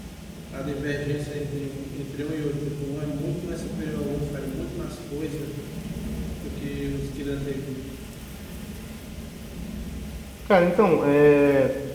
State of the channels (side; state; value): both; identical; correlation 1.00